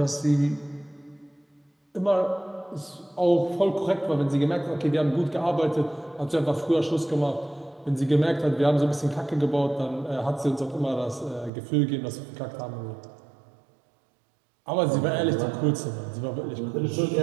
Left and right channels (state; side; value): drops out; left; at 11.5 s